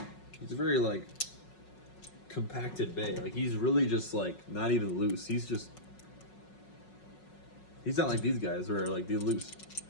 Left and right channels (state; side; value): late; right; 5.5 ms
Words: He's a very like compacted bay. Like he's really just like not even loose. He's not like these guys where like they're loose.